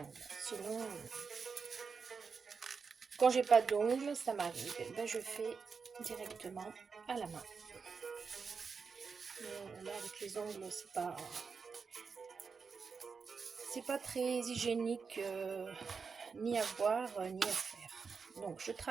Sinon, quand j'ai pas d'ongles, ça m'arrive. Ben, je fais directement à la main. Mais là, avec les ongles, c'est pas très hygiénique ni à voir ni à faire. Donc, je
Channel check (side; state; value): left; quieter; 5.4 dB